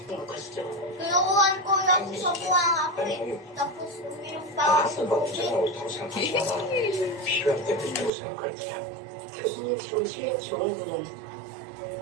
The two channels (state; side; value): drops out; left; at 8.1 s